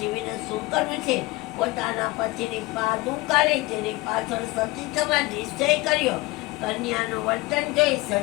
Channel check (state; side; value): quieter; right; 21.8 dB